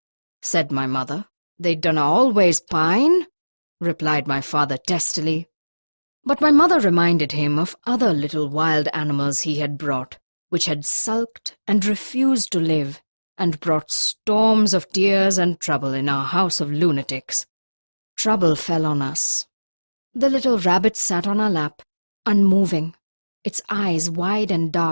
Said my mother. They dunna always pine, replied my father testily. But my mother reminded him of other little wild animals he had brought, which had sulked and refused to live, and brought storms of tears and trouble in our house of lunatics. Trouble fell on us. The little rabbit sat on our lap, unmoving, its eyes wide and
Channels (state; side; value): inverted; both; correlation -1.00